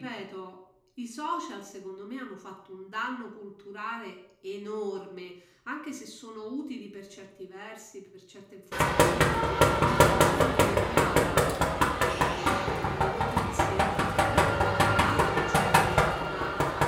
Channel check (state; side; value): identical; both; correlation 1.00